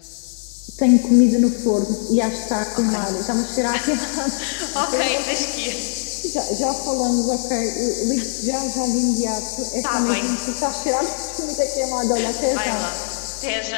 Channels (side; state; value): right; silent; 65 dB below the other